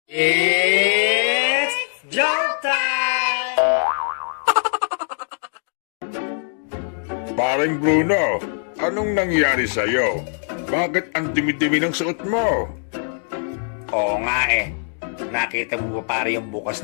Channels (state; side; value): silent; right; digital silence